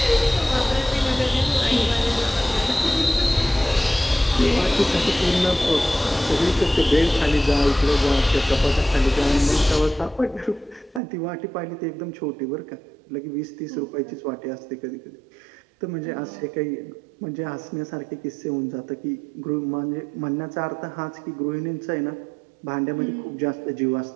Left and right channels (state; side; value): drops out; left; at 11.0 s